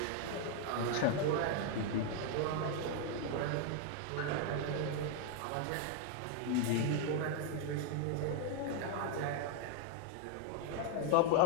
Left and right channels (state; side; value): different; both; correlation 0.00